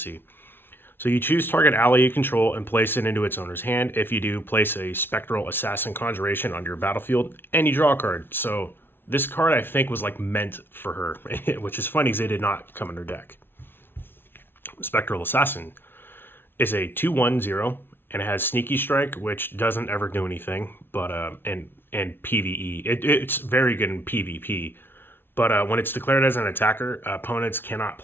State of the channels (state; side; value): late; right; 0.11 ms